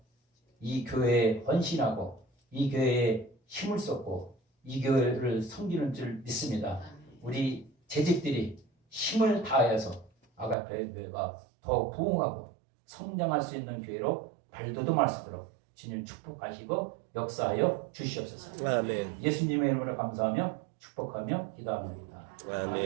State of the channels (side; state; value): left; drops out; at 10.6 s